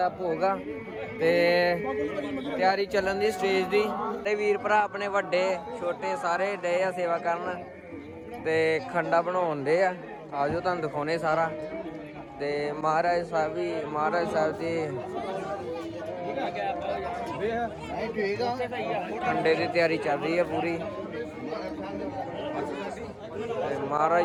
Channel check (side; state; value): both; identical; correlation 1.00